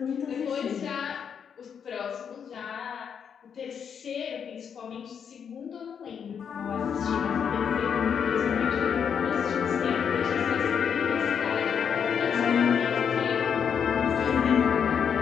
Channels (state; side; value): quieter; right; 7.4 dB